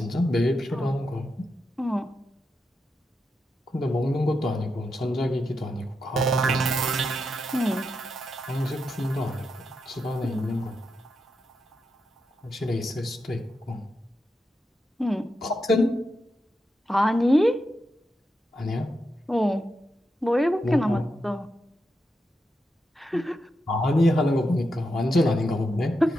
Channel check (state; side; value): normal; both; correlation 0.86